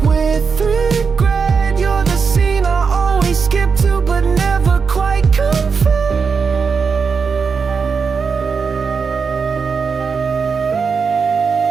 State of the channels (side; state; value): left; quieter; 5.5 dB